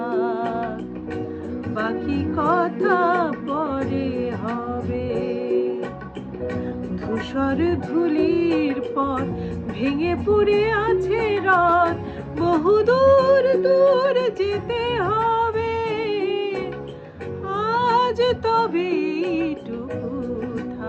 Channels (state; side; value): identical; both; correlation 1.00